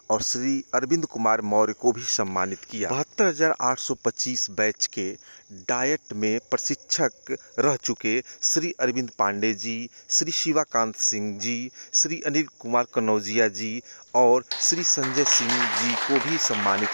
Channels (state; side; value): inverted; both; correlation -1.00